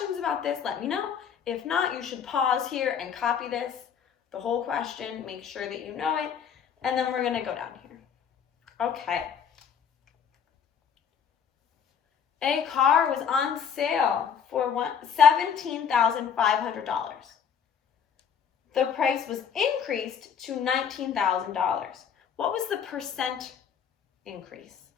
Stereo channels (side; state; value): right; quieter; 7.5 dB